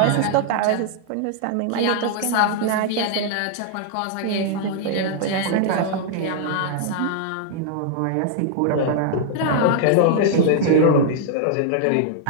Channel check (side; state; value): both; different; correlation -0.01